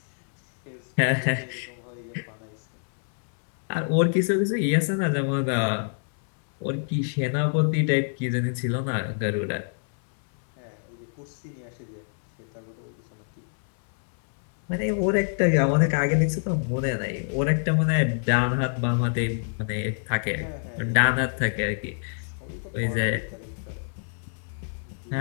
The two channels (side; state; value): right; silent; 61 dB below the other